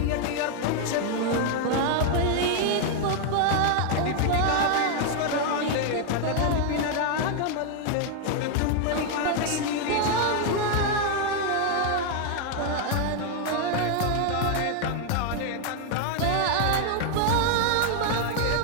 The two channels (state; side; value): different; both; correlation 0.00